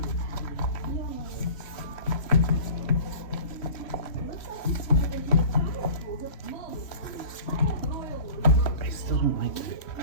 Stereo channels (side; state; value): right; late; 3.1 ms